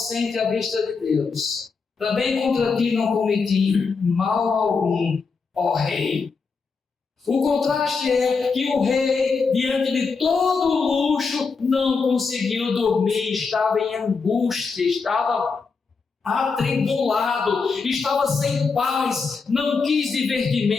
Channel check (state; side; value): quieter; right; 4.8 dB